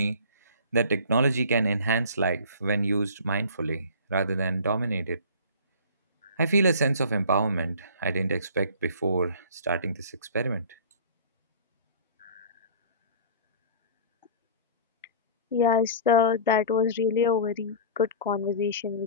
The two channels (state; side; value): inverted; both; correlation -0.41